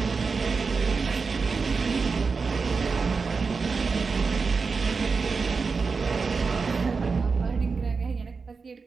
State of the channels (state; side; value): quieter; left; 4.8 dB